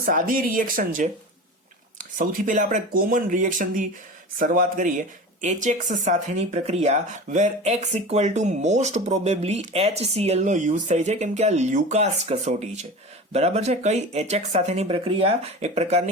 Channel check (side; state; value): both; normal; correlation 0.32